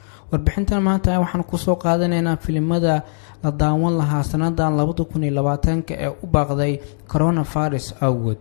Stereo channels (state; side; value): silent; right; digital silence